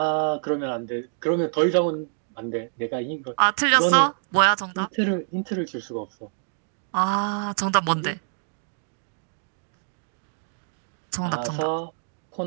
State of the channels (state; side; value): silent; left; digital silence